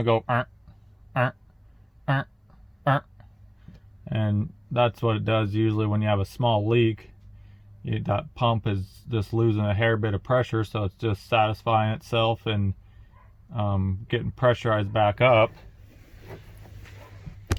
it'll go and that's what it does usually when you have a small leak. That pump is just losing a hair bit of pressure, so it's just satisfying itself and getting pressurized back up.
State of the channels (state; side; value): identical; both; correlation 1.00